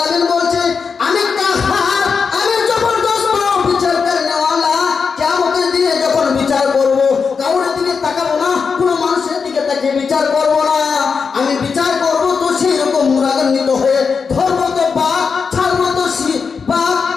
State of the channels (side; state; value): right; quieter; 5.5 dB